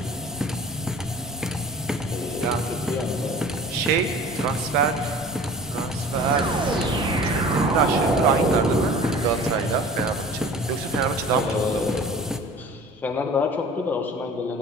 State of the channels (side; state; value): both; normal; correlation 0.44